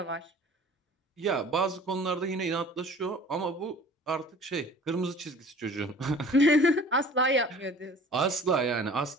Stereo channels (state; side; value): normal; both; correlation 0.47